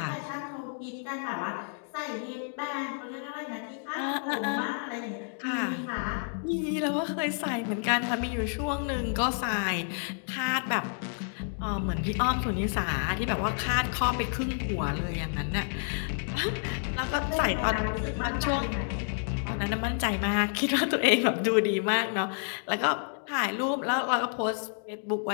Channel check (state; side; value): silent; right; 58 dB below the other